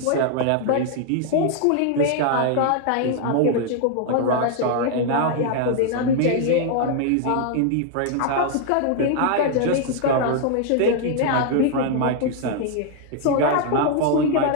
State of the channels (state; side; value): different; both; correlation 0.00